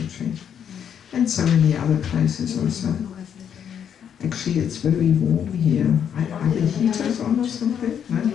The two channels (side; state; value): right; quieter; 8.5 dB